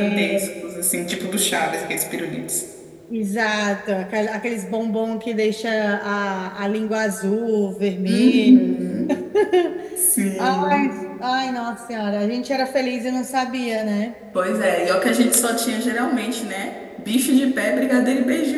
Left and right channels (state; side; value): identical; both; correlation 1.00